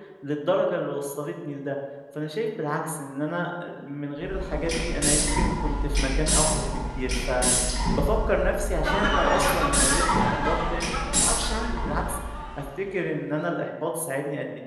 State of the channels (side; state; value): both; identical; correlation 1.00